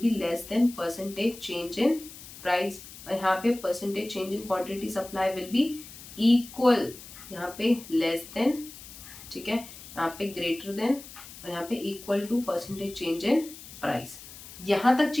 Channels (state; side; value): noise; left; hiss, 16 dB below the sound